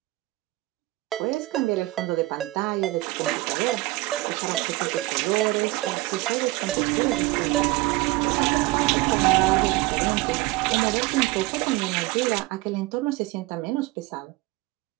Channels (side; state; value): left; quieter; 20.2 dB